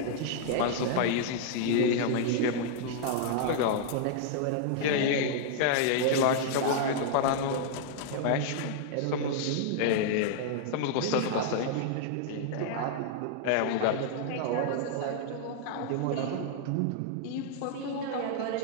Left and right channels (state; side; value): different; both; correlation -0.01